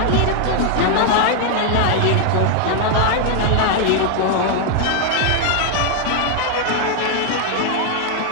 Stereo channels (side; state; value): both; different; correlation 0.00